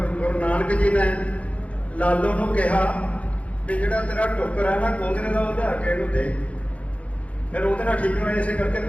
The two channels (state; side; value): late; right; 0.065 ms